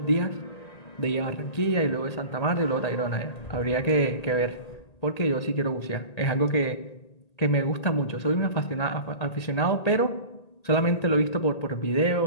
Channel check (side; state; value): right; late; 1.8 ms